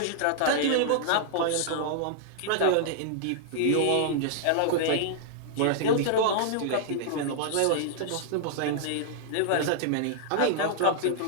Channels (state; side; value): different; both; correlation -0.01